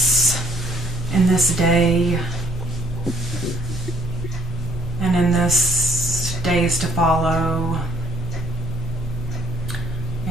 in this day and in this days to follow.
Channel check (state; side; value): normal; both; correlation 0.63